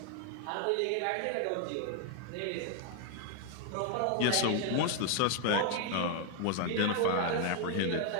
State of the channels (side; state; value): both; different; correlation 0.00